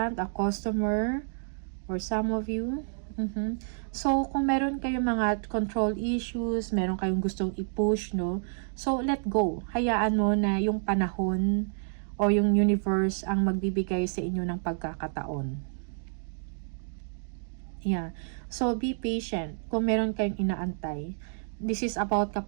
a customer, or some of you. So, kung meron kayong mga control issues, meron kayong gustong i-push, no? So, let go. Hayaan mo na yung panahon o yung universe ang magbibigay sa inyo ng pagkakataon. Yeah. So, be patient. Kung meron kayong inaantay. This is about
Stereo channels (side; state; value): left; silent; digital silence